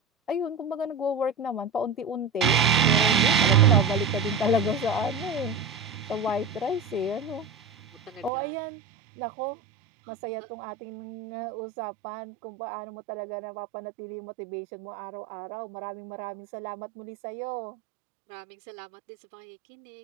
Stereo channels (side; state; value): left; drops out; at 8.3 s